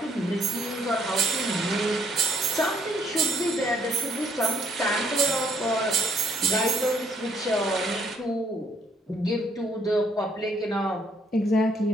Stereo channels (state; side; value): normal; both; correlation 0.69